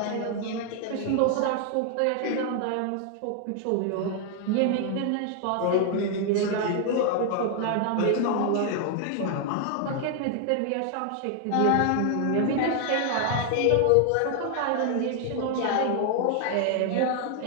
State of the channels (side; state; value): both; different; correlation 0.00